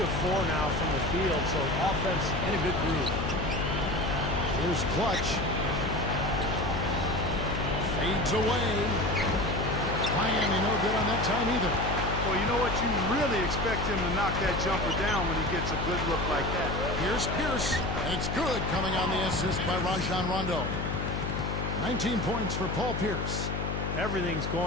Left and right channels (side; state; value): left; noise; hum, 3 dB below the sound